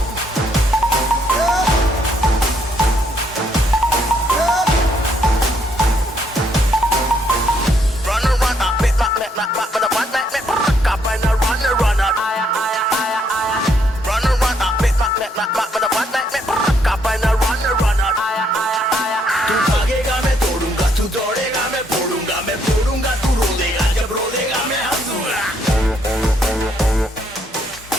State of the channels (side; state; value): both; normal; correlation 0.72